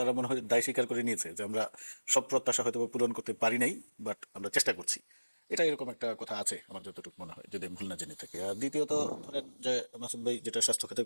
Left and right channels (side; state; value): both; inverted; correlation -1.00